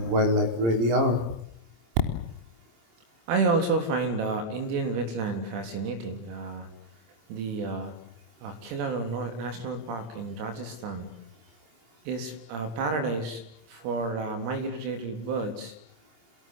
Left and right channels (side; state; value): left; late; 26 ms